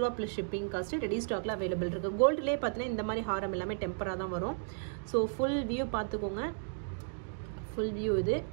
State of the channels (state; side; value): silent; left; digital silence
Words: ப்ளஸ் ஷிப்பிங் காஸ்ட்டு ரெடி ஸ்டாக்ல அவைலபிள் இருக்குது. கோல்டுலேயே பார்த்தீங்கன்னா இந்த மாதிரி ஹாரம் எல்லாமே டெம்பராக தான் வரும். ஸோ ஃபுல் வியூ பார்த்துக்கோங்க. ஃபுல் வியூ இது